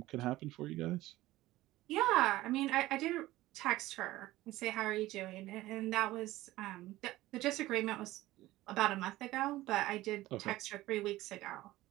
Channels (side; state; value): left; quieter; 16.9 dB